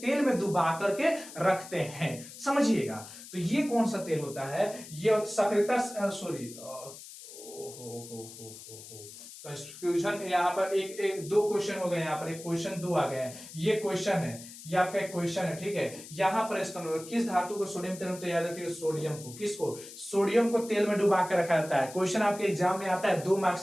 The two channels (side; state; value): left; noise; hiss, 15 dB below the sound